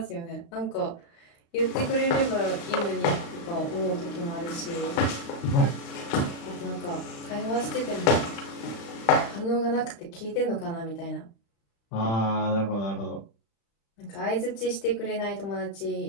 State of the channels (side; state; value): right; late; 35 ms